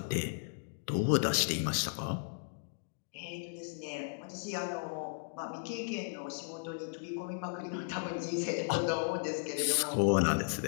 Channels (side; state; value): right; silent; digital silence